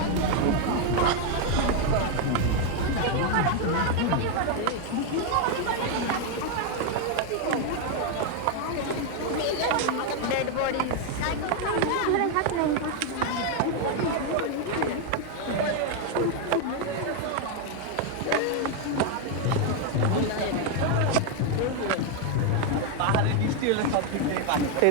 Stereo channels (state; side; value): different; both; correlation 0.01